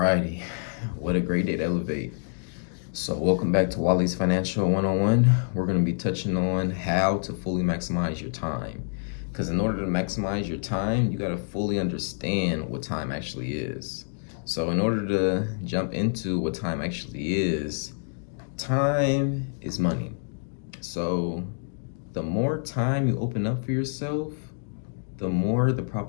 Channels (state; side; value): silent; right; digital silence